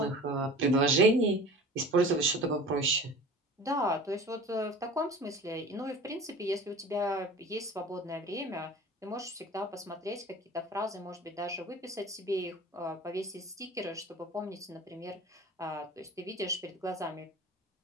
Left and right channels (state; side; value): normal; both; correlation 0.40